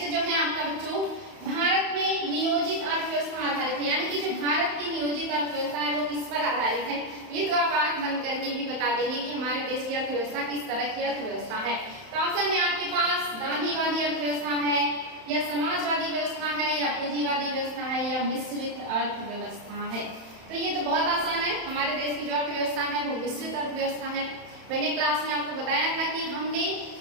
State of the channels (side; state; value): left; late; 31 ms